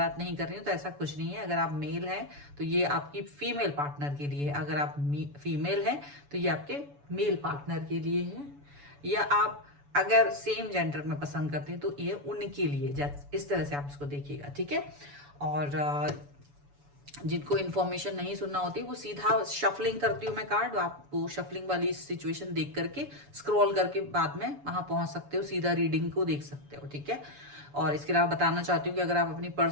नहीं कर रही हूँ, तो ऐसा कुछ नहीं है। अगर आप मेल हैं तो ये आपकी फीमेल पार्टनर के लिए है, अगर आप फीमेल हैं तो ये आपके मेल पार्टनर के लिए है, या आप अगर सेम जेंडर में पसंद करते हैं तो ये उनके लिए। इस तरह से आप इसको देखिएगा, ठीक है। और जिनको इन्फॉर्मेशन नहीं सुनना होती वो सीधा शफलिंग करती हूँ मैं कार्ड, आप वो शफलिंग वाली सिचुएशन देख करके स्क्रॉल करके बाद में वहां पहुंच सकते हो, सीधा रीडिंग को देख सकते हो, ठीक है। और इसके अलावा बताना चाहती हूँ कि अगर आप अपनी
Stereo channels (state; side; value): late; left; 7.0 ms